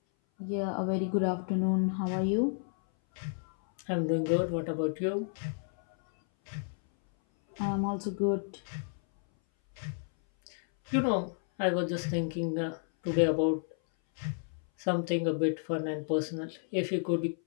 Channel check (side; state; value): right; silent; 57 dB below the other